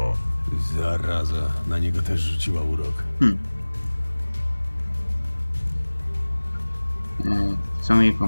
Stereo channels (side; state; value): both; inverted; correlation -1.00